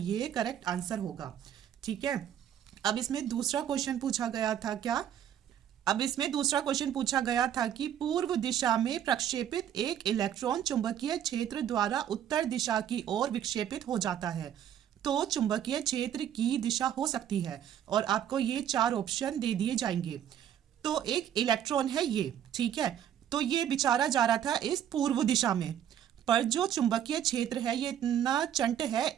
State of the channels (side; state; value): left; quieter; 10.1 dB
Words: करेक्ट आंसर होगा, ठीक है। अब इसमें दूसरा क्वेश्चन पूछा गया था क्या, अब इसमें दूसरा क्वेश्चन पूछा गया था कि पूर्व दिशा में प्रक्षेपित एक इलेक्ट्रॉन चुंबकीय क्षेत्र द्वारा उत्तर दिशा की ओर विक्षेपित हो जाता है। तो चुंबकीय क्षेत्र की दिशा हो सकती है और आपको ये 4 ऑप्शन दे दिए जाएंगे। तो एक इलेक्ट्रॉन है ये, ठीक है। तो ये बेचारा जा रहा था इस पूर्व दिशा में, पर जो चुंबकीय क्षेत्र है ये इतना चंट है,